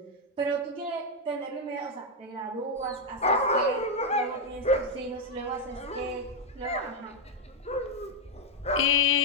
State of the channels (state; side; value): normal; both; correlation 0.02